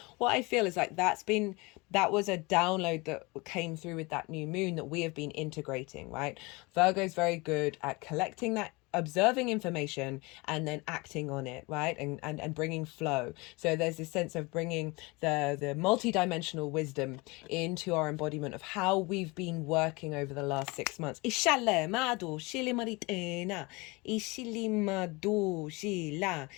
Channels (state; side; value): quieter; right; 25.4 dB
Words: What I feel is like that was a download that came through with that new moon that we have been integrating, right? Virgo is very good at collecting that, observing information and then acting on it, right? And bringing flow. So there's this sense of bringing the multi-dimensional wisdom into our embodiment of how we've been working over the last 6 months.